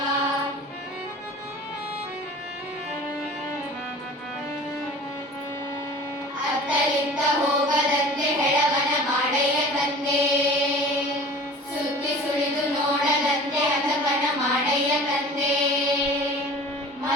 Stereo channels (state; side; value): normal; both; correlation 0.42